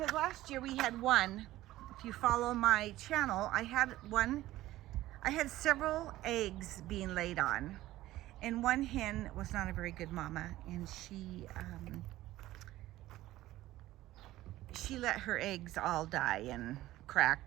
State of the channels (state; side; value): quieter; left; 15.8 dB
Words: last year we had one. If you follow my channel, I had several eggs being laid on. And one hen was not a very good mama, and she let her eggs all die and